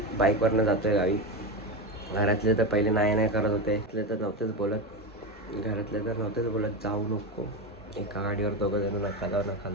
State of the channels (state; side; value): normal; both; correlation 0.16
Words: बाईकवरनं जातो आहे गावी. घरातले तर पहिले नाही करत होते, तर नव्हतेच बोलत जाऊ नको, एका गाडीवर दोघं जण नका